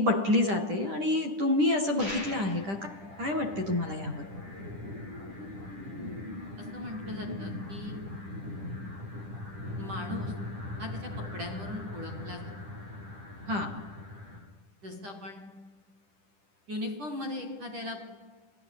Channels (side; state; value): left; late; 10 ms